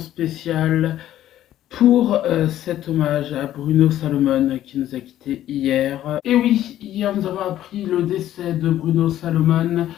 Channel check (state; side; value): quieter; right; 12.6 dB